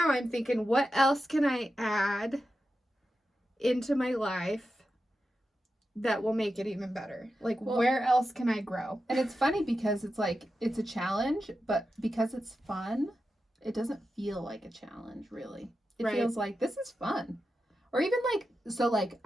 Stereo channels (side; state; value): both; normal; correlation 0.90